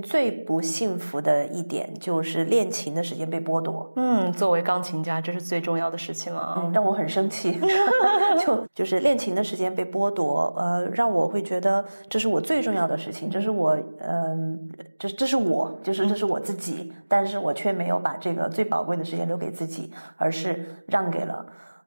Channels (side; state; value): both; inverted; correlation -1.00